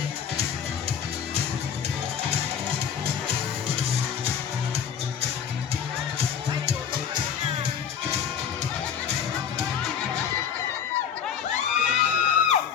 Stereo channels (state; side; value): quieter; right; 8.0 dB